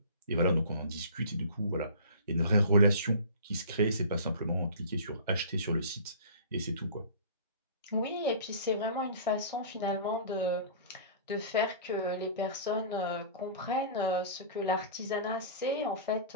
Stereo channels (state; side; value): inverted; both; correlation -0.41